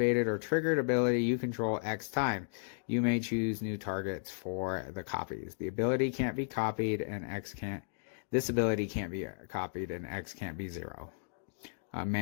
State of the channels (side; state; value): right; silent; digital silence